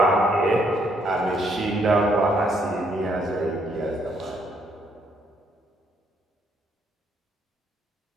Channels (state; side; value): normal; both; correlation 0.70